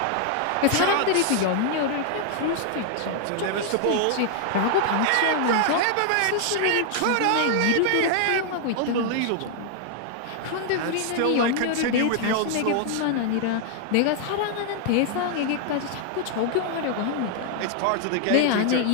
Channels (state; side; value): different; both; correlation 0.00